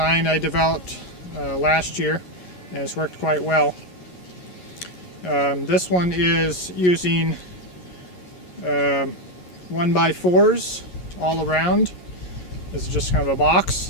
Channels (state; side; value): late; right; 11 ms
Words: I developed last year, and it's worked quite well. This one is using 1x4s all around. This is just kind of a